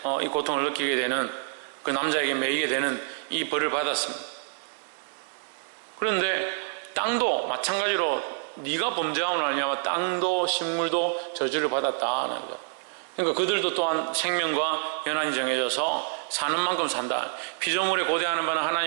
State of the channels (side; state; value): left; silent; 60 dB below the other